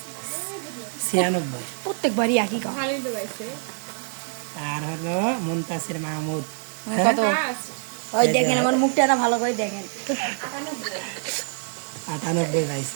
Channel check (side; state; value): left; silent; 59 dB below the other